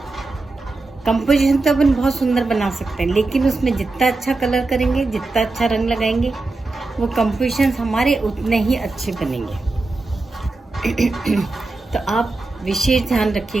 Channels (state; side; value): quieter; left; 3.4 dB